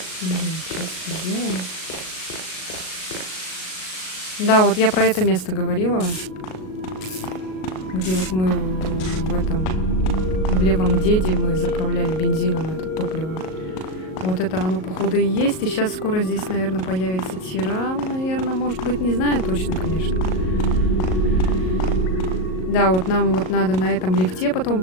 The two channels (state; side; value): late; right; 38 ms